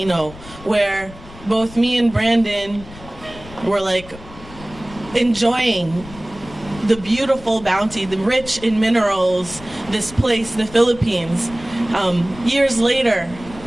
where both me and Brandon were like enjoying the beautiful bounty, the rich in minerals, this place, the Philippines. Years later,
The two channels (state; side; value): noise; left; rumble, 18 dB below the sound